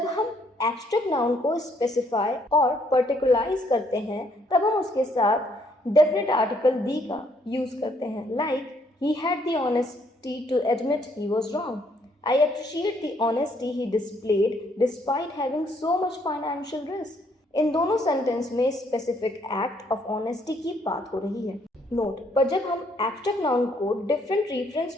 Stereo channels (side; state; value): both; normal; correlation 0.68